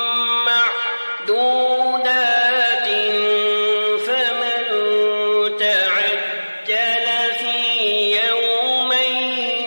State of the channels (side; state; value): both; inverted; correlation -1.00